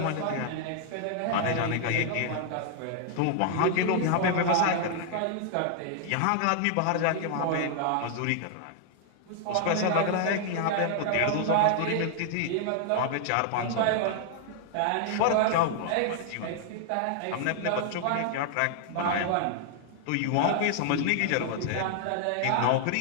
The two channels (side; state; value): both; different; correlation 0.00